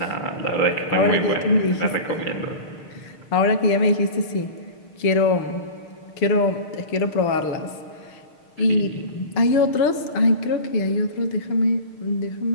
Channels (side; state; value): right; late; 6.6 ms